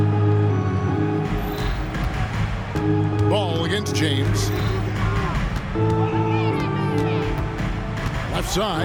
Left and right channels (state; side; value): identical; both; correlation 1.00